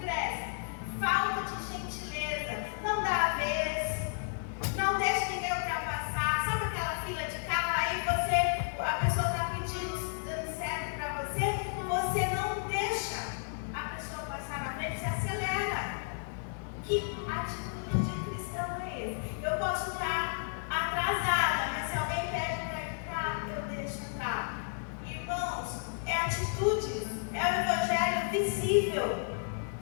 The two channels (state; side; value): silent; right; 56 dB below the other